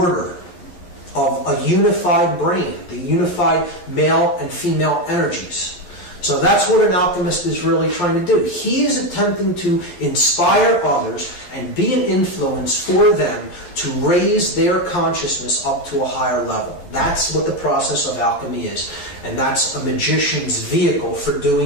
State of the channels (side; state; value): right; late; 11 ms